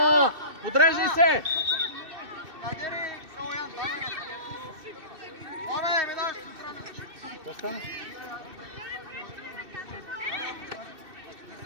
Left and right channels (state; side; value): late; left; 2.6 ms